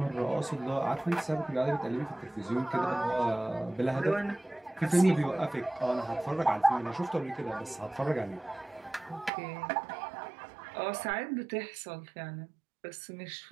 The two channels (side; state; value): left; drops out; at 9.3 s